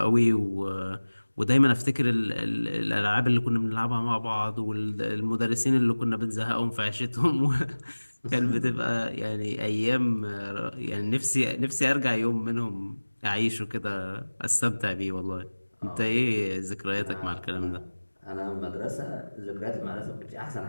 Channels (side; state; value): both; inverted; correlation -1.00